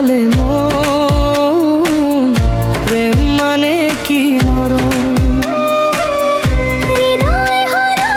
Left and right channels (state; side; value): identical; both; correlation 1.00